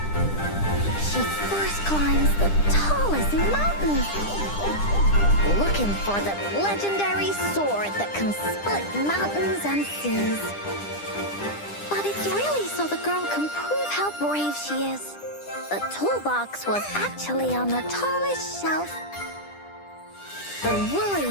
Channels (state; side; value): late; right; 10 ms